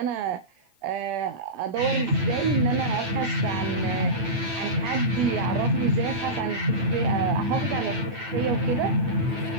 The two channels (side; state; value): left; late; 9.0 ms